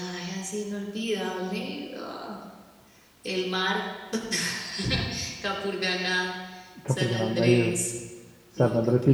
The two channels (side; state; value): both; identical; correlation 1.00